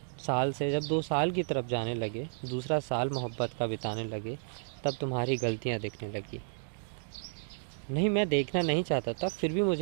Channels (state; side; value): silent; left; digital silence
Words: साल से जब 2 साल की तरफ जाने लगे, दूसरा साल मोहब्बत का बिताने लगे, तब तुम्हारी गलतियाँ दिखने लगी। नहीं, मैं देखना नहीं चाहता था, फिर भी